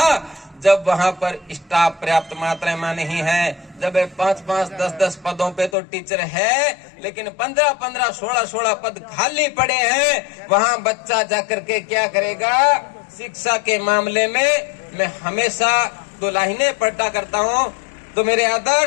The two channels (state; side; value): drops out; right; at 5.8 s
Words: जब वहां पर स्टाफ पर्याप्त मात्रा में नहीं है, जब 5-5, 10-10 पदों पे तो टीचर है, लेकिन 15-15, 16-16 पद खाली पड़े हैं, वहां बच्चा जाकर के क्या करेगा? शिक्षा के मामले में मैं हमेशा दो लाइनें पढ़ता करता हूं, तो मेरे